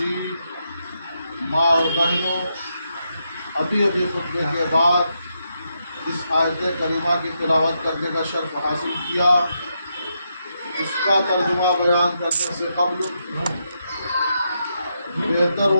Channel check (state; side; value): inverted; both; correlation -0.82